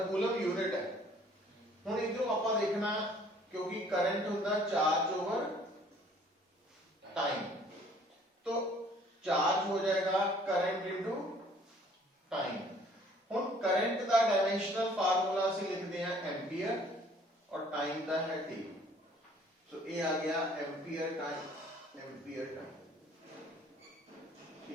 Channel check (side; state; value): both; normal; correlation 0.57